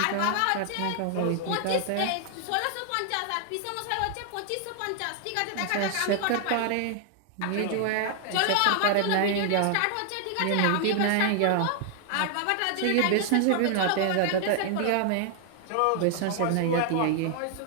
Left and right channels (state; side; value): different; both; correlation 0.00